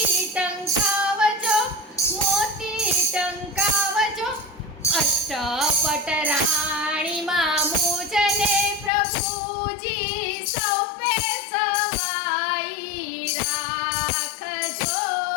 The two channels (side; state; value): right; drops out; at 8.9 s